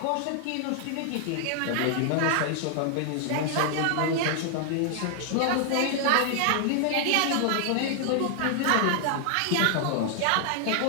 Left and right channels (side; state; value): both; different; correlation 0.00